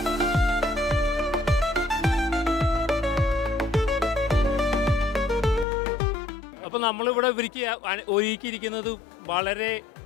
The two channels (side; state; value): right; drops out; at 5.7 s